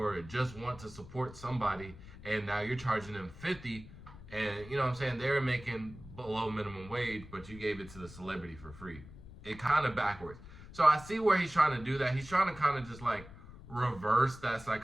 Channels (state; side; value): noise; left; rumble, 17 dB below the sound